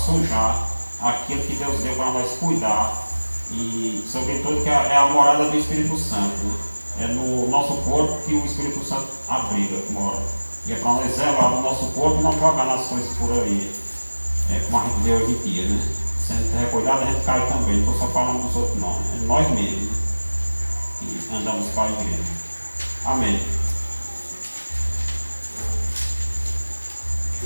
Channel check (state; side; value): inverted; both; correlation -1.00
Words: aquilo que Deus deu para nós cuidar. E sobretudo que é a morada do Espírito Santo, né? É no nosso corpo que o Espírito Santo abriga, mora. E é para nós zelar no nosso corpo e não jogar nas coisas por aí, como a gente vê hoje em dia, né? Se a gente recuidado, a gente cai também. Não estou só falando dos outros, não. É nós mesmos, né? Que andamos para a igreja. Amém.